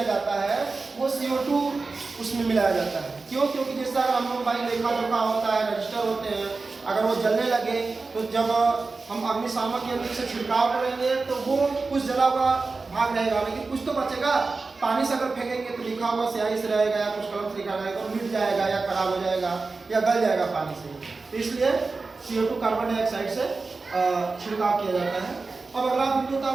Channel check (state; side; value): quieter; left; 4.0 dB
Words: जाता है वो CO2 उसमें मिलाया जाता है। क्यों? क्योंकि जैसे अगर हम लोग भाई लेखा जोखा होता है, रजिस्टर होते हैं, अगर वो जलने लगे तो जब हम अग्निशामक यंत्र से छिड़काव करेंगे तो वो कुछ जला हुआ भाग रहेगा, लेकिन कुछ तो बचेगा। पानी से अगर फेंकेंगे तो लिखा हुआ स्याही से रहेगा या कुछ कलम से लिखा रहेगा, तो मिट जाएगा या खराब हो जाएगा या गल जाएगा पानी से। तो इसलिए CO2 कार्बन डाइऑक्साइड से छिड़काव किया जाता है। अब अगला बिंदु था